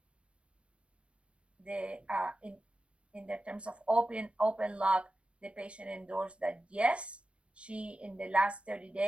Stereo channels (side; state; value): left; late; 0.060 ms